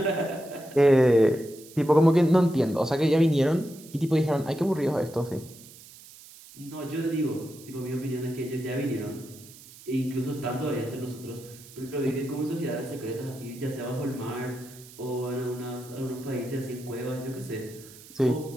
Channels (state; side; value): noise; right; hiss, 20 dB below the sound